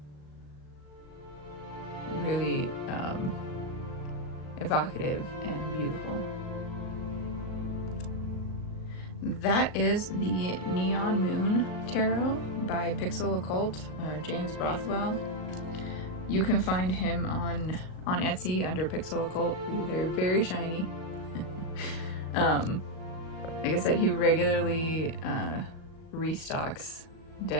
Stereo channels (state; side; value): late; right; 37 ms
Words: Really evocative and beautiful. That is the Neon Moon Tarot by Pixel Occult, or James Rothwell. You can find him on Etsy under Pixel Occult. They're very shiny. Like I said, he regularly restocks